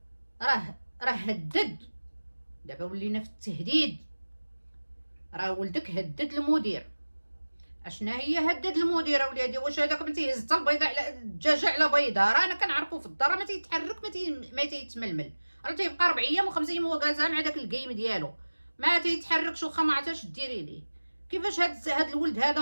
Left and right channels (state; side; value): inverted; both; correlation -1.00